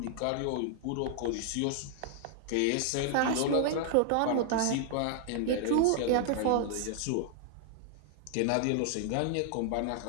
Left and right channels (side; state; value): both; different; correlation 0.00